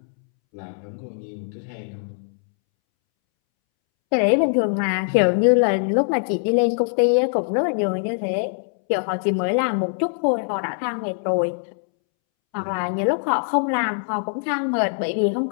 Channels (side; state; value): right; silent; 64 dB below the other